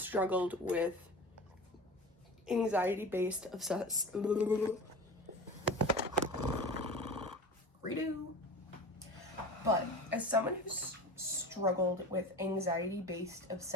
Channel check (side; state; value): both; normal; correlation 0.33